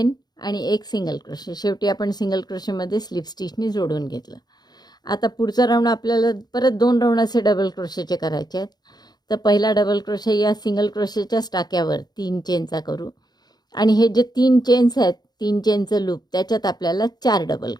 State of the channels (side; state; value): right; late; 0.20 ms